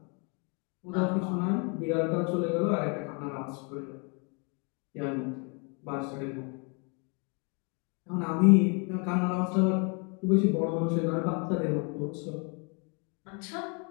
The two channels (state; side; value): quieter; right; 34.8 dB